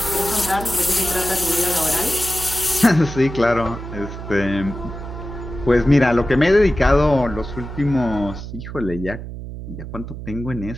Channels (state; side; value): noise; right; hum, 10 dB below the sound